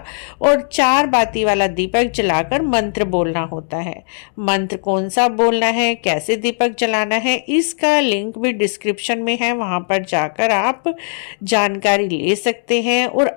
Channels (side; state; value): right; silent; digital silence